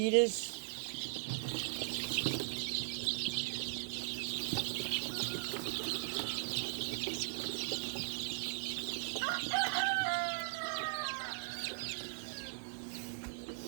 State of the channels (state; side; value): silent; left; 52 dB below the other